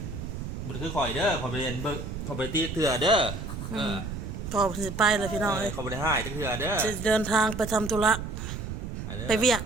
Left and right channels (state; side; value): noise; right; rumble, 6 dB below the sound